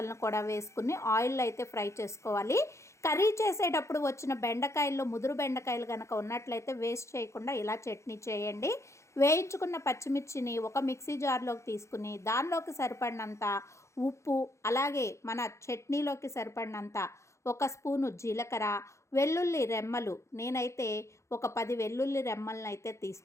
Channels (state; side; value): late; right; 0.14 ms